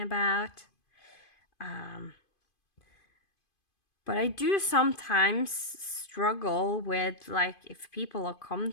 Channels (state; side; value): late; right; 2.5 ms